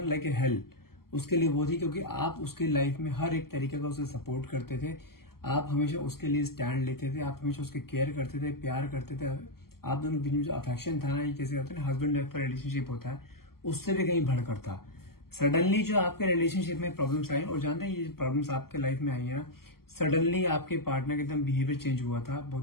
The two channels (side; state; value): right; late; 0.93 ms